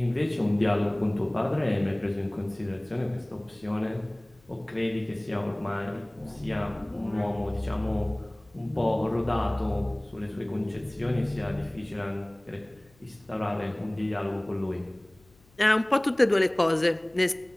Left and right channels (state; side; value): noise; left; hum, 30 dB below the sound